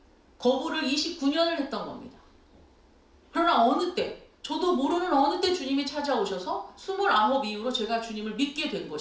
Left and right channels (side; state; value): both; identical; correlation 1.00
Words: 거부를 29년을 했던 겁니다. 그러나 어느 때, 저도 모르는 어느 때 주님이 찾아오셔서 29 이후로 제가 주님을 믿게 된